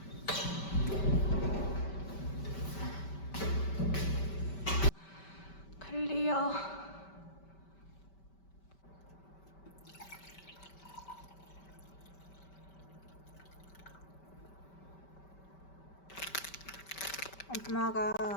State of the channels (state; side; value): late; right; 5.2 ms